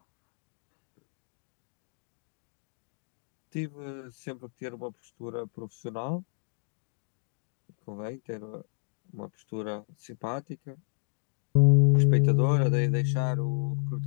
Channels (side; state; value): right; silent; digital silence